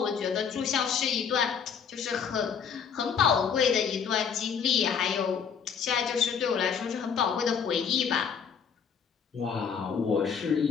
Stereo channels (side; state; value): right; quieter; 6.9 dB